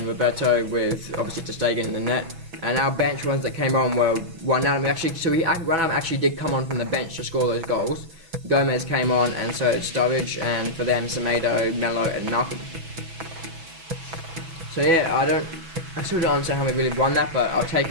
Roberto, with obviously Ter Stegen in the net. And our bench ones that came on were Wijnaldum actually did come on from the bench to score those goals. Gomez came on, and so did Sturridge, and for them Semedo, Melo and Malcolm. So yeah, I still don't understand how we really won that, but I'll take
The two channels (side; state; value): left; late; 6.1 ms